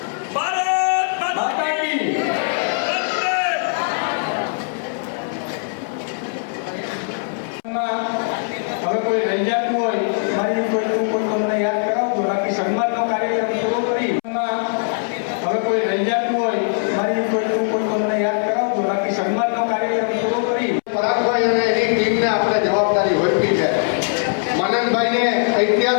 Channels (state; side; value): silent; right; 65 dB below the other